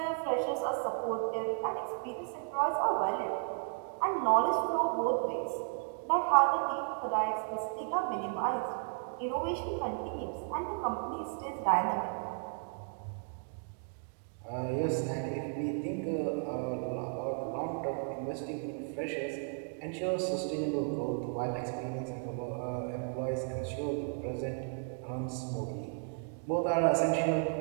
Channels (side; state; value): left; silent; 55 dB below the other